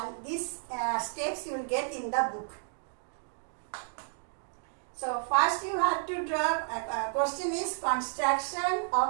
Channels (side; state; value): left; silent; digital silence